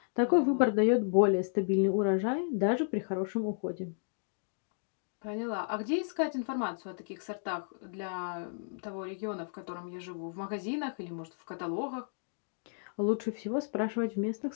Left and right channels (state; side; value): silent; right; digital silence